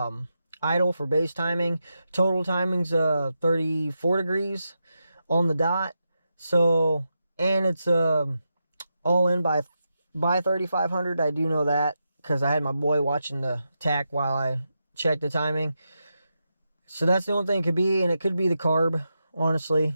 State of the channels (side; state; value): both; inverted; correlation -0.87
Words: idle for base timing. Total timing's 34 degrees on the dot. So, and it's all in by 3,500. I do know that because I had my boy watching the tach while I checked the timing. So that's the only thing it could be, and it could be the carb,